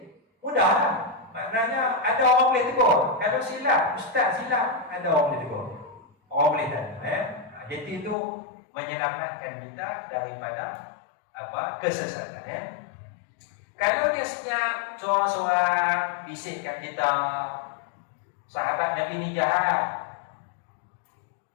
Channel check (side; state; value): right; drops out; at 8.2 s